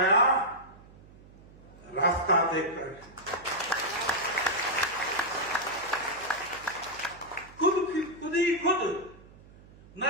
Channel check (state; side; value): noise; right; hum, 22 dB below the sound